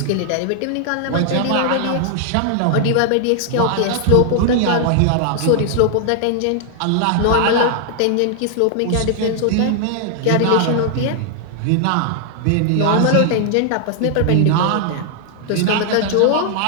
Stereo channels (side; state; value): both; different; correlation 0.00